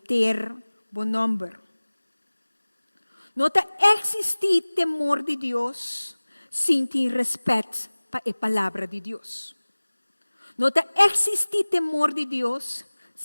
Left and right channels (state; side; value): inverted; both; correlation -1.00